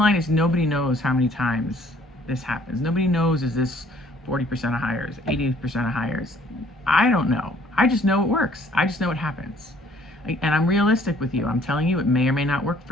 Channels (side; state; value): both; normal; correlation 0.59